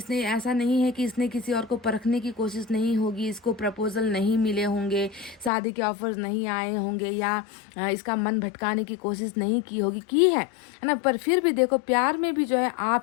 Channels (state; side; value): drops out; right; at 5.5 s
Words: ऐसा नहीं है कि इसने किसी और को परखने की कोशिश नहीं होगी, इसको प्रपोजल नहीं मिले होंगे, शादी के ऑफर्स नहीं आए होंगे, या इसका मन भटकाने की कोशिश नहीं की होगी, की है ना। पर फिर भी देखो, प्यार में भी जो है